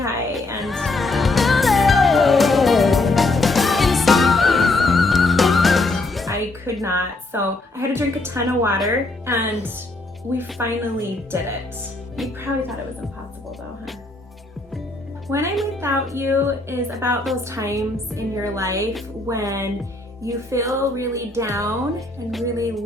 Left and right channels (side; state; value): right; quieter; 3.0 dB